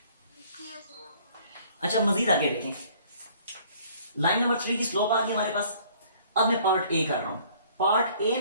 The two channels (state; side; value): inverted; both; correlation -0.56